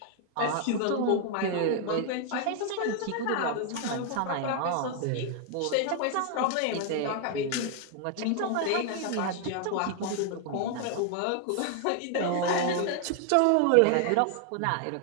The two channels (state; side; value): different; both; correlation 0.00